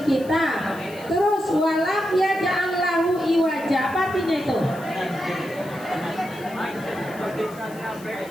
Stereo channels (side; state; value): left; noise; hiss, 21 dB below the sound